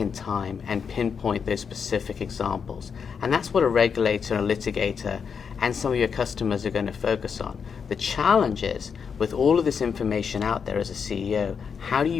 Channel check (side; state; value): right; quieter; 6.4 dB